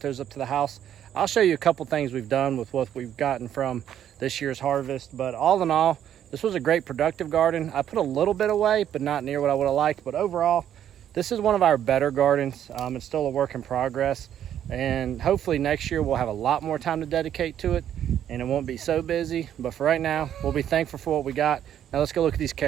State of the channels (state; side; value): quieter; left; 10.3 dB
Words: up to the house, I'll show you a couple things we've done with what we've gotten from this year's harvest. But all in all, this was a great productive garden. I put a little bit away, but not near what I would have liked. But overall, this is one of our better gardens. It's still a work in progress. And hopefully next year we'll have a lot more time to dedicate to it and it won't be so busy. But for right now, we'll be thankful for what we got. Now let's go look at these